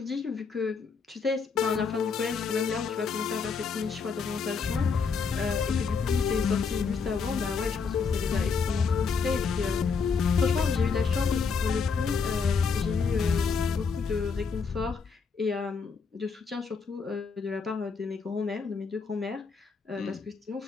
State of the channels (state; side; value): quieter; right; 5.4 dB